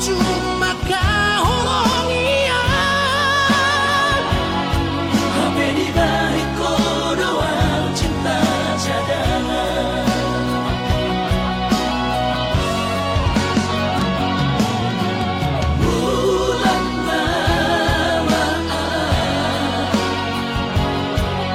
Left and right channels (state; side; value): identical; both; correlation 1.00